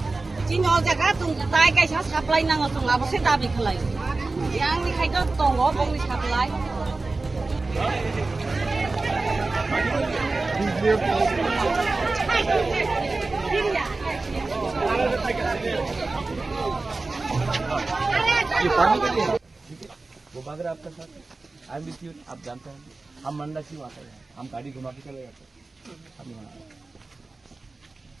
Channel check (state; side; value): quieter; left; 3.5 dB